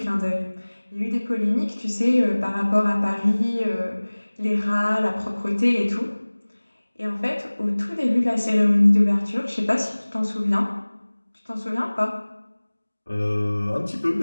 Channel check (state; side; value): inverted; both; correlation -1.00